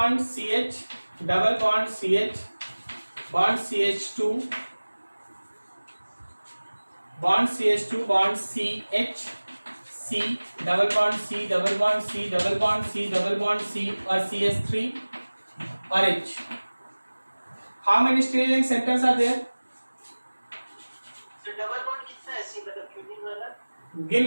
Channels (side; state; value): both; inverted; correlation -1.00